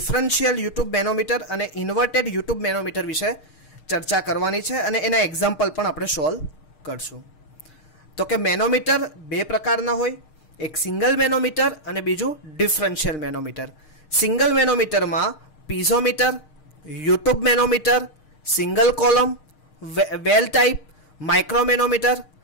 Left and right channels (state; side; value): late; right; 6.5 ms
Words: યુટ્યુબ મેનોમીટર અને ઇન્વર્ટેડ યુટ્યુબ મેનોમીટર વિશે ચર્ચા કરવાની છે અને એના એક્ઝામ્પલ પણ આપણે સોલ્વ કરશું. તો કે મેનોમીટર બે પ્રકારના હોય, એક સિંગલ મેનોમીટર અને બીજું ડિફરન્શિયલ મેનોમીટર. સિંગલ મેનોમીટરમાં piezometer, U tube manometer, single column, well type, micromanometer,